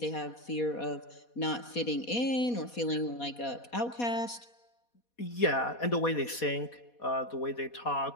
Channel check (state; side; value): late; right; 4.2 ms